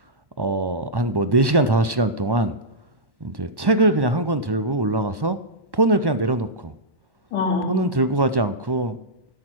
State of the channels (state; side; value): late; left; 1.1 ms